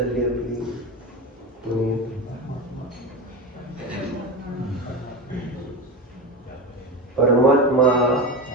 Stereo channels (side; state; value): both; normal; correlation 0.23